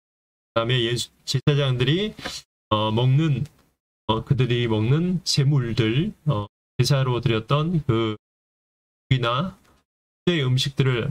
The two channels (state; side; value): identical; both; correlation 1.00